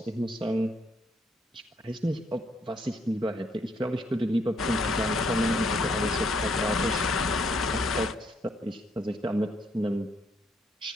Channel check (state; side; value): normal; both; correlation 0.71